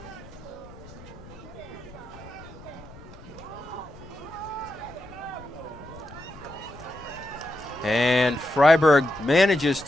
And Fryeburg manages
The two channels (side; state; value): left; noise; rumble, 18 dB below the sound